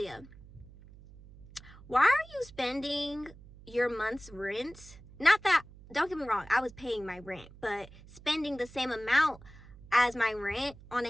why are you spending your month's rent? Not that, don't get me wrong, I was paying my rent, but spending the same amount as my rent on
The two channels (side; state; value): right; noise; hum, 20 dB below the sound